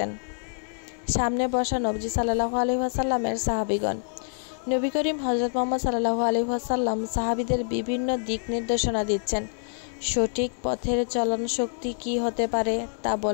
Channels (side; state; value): right; silent; digital silence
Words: সামনে বসা নবীজি সাল্লাল্লাহু আলাইহি ওয়াসাল্লামের সাহাবীগণ। নবী করিম হযরত মুহাম্মদ সাল্লাল্লাহু আলাইহি ওয়াসাল্লাম সাহাবীদের বিভিন্ন দিক নির্দেশনা দিচ্ছেন। সঠিক পথের চলন শক্তি কি হতে পারে তা